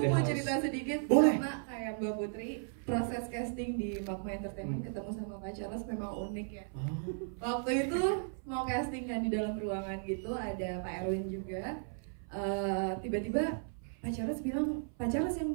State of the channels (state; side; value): silent; left; 54 dB below the other